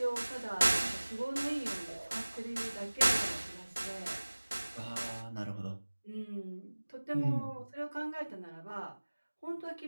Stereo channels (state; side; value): inverted; both; correlation -1.00